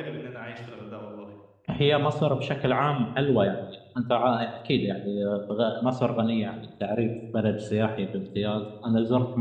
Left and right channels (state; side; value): identical; both; correlation 1.00